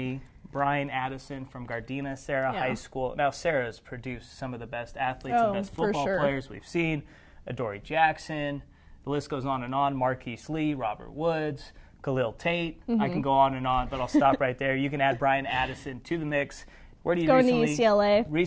BRYAN Addison from Gardena Sarah High School. Now, Sarah's produced some of the best athletes and best football players we've seen. Adoree Jackson. The list goes on and on. Marquise Lee, Robert Woods, Khalil Tate. I can go on and on, but I'll stop right there. You can add BRYAN Addison to the mix. Where do you going to UCLA?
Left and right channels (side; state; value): both; identical; correlation 1.00